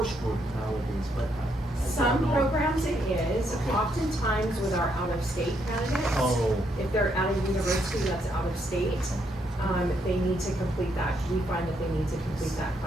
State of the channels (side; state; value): both; normal; correlation 0.75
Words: nowadays, but I Some don't know. programs it is, Okay. oftentimes with our out-of-state candidates. Oh. If they're at a university that's out of state, they need to complete that. We find that they need to complete that